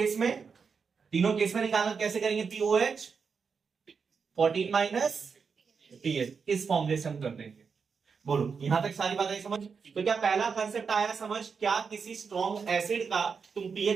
में निकालना कैसे करेंगे, पीओएच 14 माइनस पीएच, इस फॉर्मूले से हम कर देंगे। बोलो यहां तक सारी बातें समझ। तो क्या पहला कंसेप्ट आया समझ, क्या किसी स्ट्रॉन्ग एसिड का तुम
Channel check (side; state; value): left; quieter; 5.7 dB